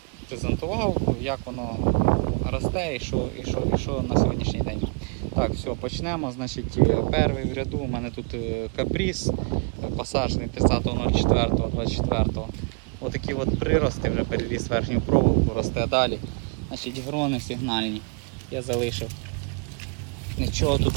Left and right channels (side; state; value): left; quieter; 36.8 dB